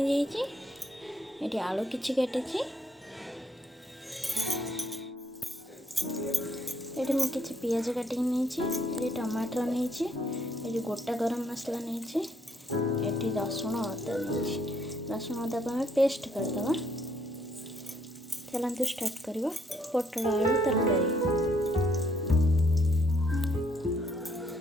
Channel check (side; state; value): both; normal; correlation 0.70